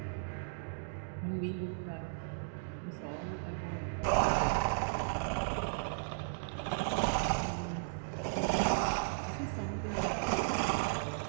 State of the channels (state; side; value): silent; left; digital silence